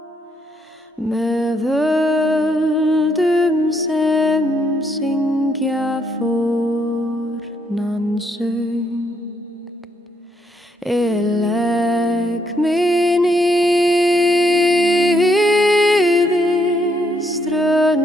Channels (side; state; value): both; normal; correlation 0.73